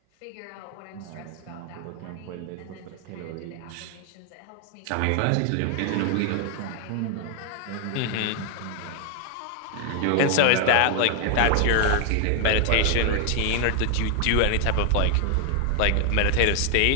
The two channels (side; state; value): both; different; correlation 0.00